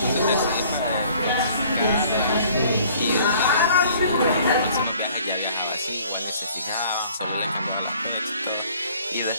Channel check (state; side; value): inverted; both; correlation -0.55